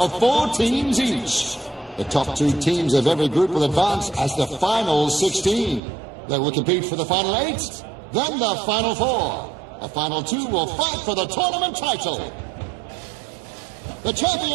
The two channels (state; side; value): drops out; left; at 5.8 s